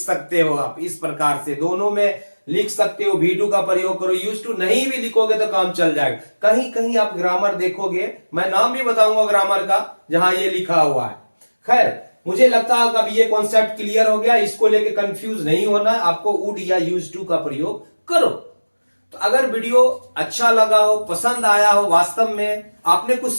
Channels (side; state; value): both; inverted; correlation -1.00